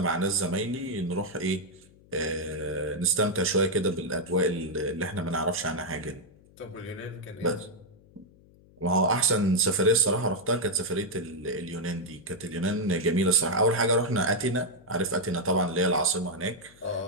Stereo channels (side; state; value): left; noise; hum, 27 dB below the sound